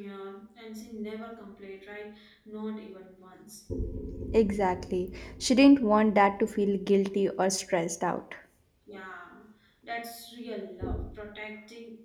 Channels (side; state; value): both; identical; correlation 1.00